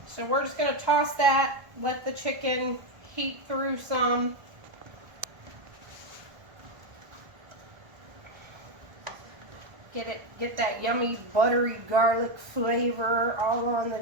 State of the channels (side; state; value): left; late; 1.4 ms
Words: So we're just going to toss that, let the chicken heat through some. Get that yummy buttery garlic flavor all on the